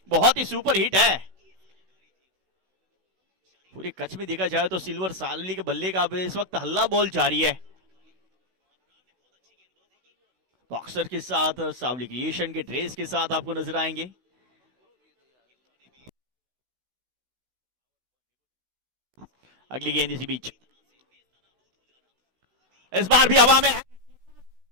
बहुत ही सुपर हिट है। पूरे कच्छ में देखा जाए तो सिल्वर सावली के बल्ले का इस वक्त हल्ला बॉल जारी है। बॉक्सर के साथ सावली क्रिएशन के ड्रेस के साथ आपको नजर आएंगे। अगली गेंद इसी बीच इस बार भी हवा में है।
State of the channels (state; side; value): late; left; 16 ms